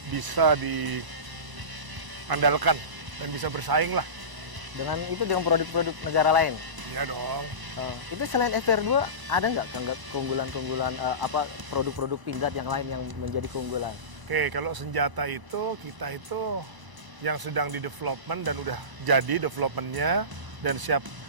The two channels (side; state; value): left; late; 1.0 ms